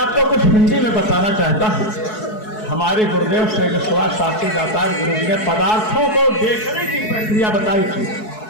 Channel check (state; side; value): late; right; 4.7 ms